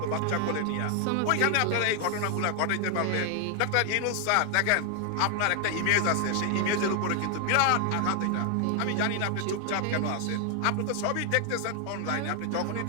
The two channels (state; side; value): different; both; correlation 0.00